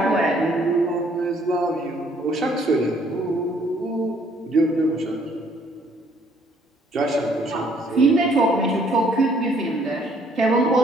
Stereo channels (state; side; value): normal; both; correlation 0.63